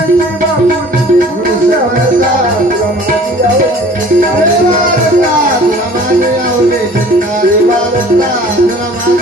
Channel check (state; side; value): normal; both; correlation 0.49